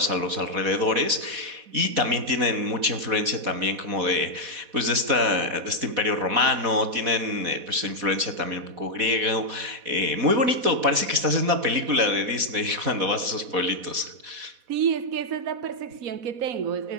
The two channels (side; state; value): left; late; 4.1 ms